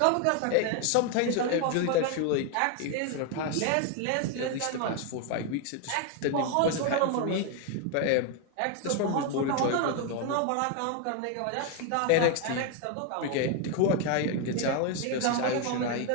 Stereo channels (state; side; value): different; both; correlation 0.01